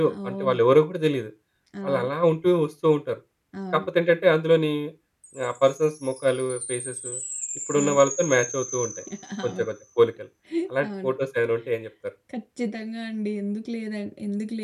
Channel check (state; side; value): identical; both; correlation 1.00